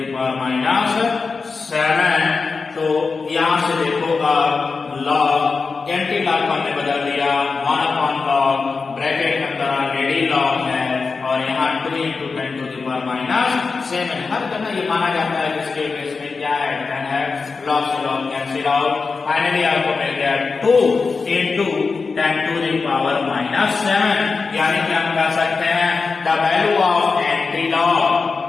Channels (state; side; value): quieter; right; 4.6 dB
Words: power -7। तो यहां से देखो अब log एंटी लॉग को हमने बदल दिया 1 upon log, ब्रैकेट के अंदर ऑलरेडी log है और यहाँ 2 into 10 to the power -7। हर जगह ये माना जाता है इसके केस में क्या है, 10 है, log से log कैंसिल आउट, फाइनली आपको मिल गया 2 into 10 to the power -7। यानी कि हम कह सकते हैं the value of anti log,